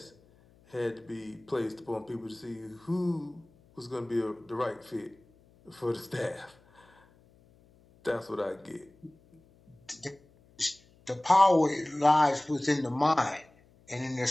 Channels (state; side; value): noise; left; hum, 30 dB below the sound